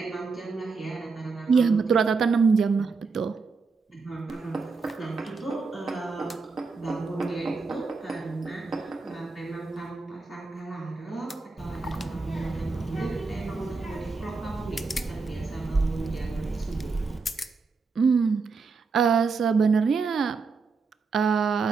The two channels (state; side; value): quieter; left; 4.5 dB